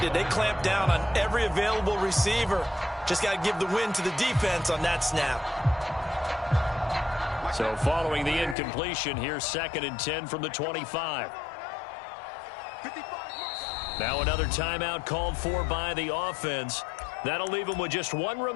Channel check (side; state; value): right; drops out; at 8.6 s